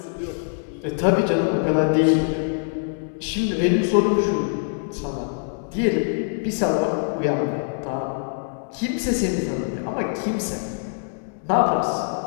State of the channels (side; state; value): right; silent; digital silence